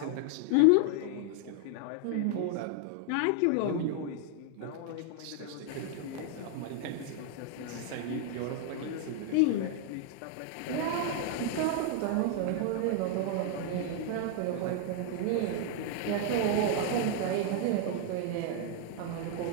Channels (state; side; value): different; both; correlation 0.00